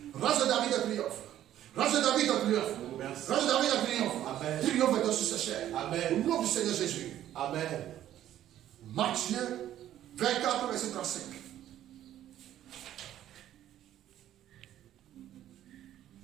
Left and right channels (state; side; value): quieter; left; 12.1 dB